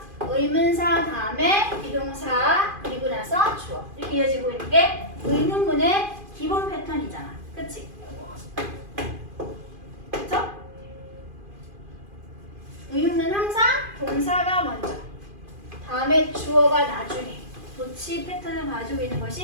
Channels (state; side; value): late; left; 2.5 ms